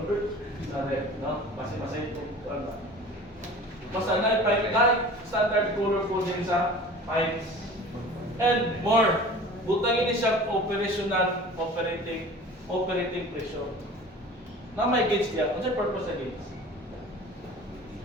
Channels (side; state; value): both; normal; correlation 0.41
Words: Sa red, no? Masay ito. Basta na standard color po din sa pipes. And more, butangin siya operational, operating pressure. Na may gauge niya. Ano siya purpose sa gauge?